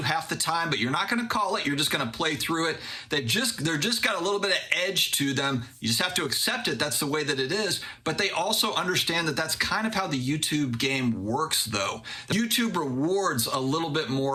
half the time, but you're not going to call it. You're just going to play through it. They're just got a little bit of edge to them. You just have to accept it. That's the way that it is. But they also understand that that's kind of how the YouTube game works, though. YouTube rewards a little bit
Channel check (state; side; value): identical; both; correlation 1.00